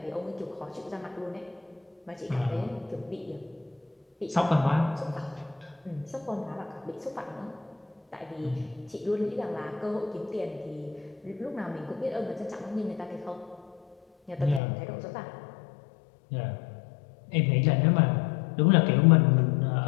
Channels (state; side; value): drops out; right; at 14.6 s